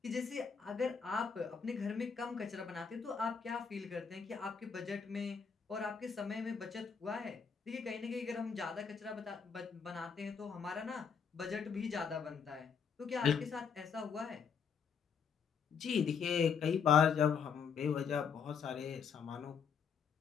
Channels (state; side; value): quieter; right; 6.5 dB